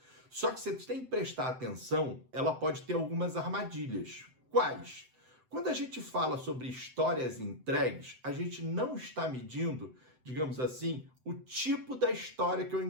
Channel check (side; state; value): left; late; 7.8 ms